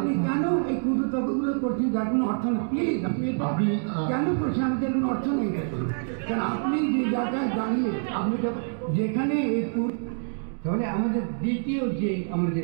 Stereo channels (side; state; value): left; silent; 61 dB below the other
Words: কেন এই কূটতর্কগুলো করছেন যার কোনো অর্থ নেই? প্লিজ আপনি এটা কেন করছেন? আমাদের কোনো অর্থ নেই। কারণ আপনি যে জায়গায় দাঁড়িয়ে আপনি যেখানে তাহলে আমাদের দ্বিতীয় যে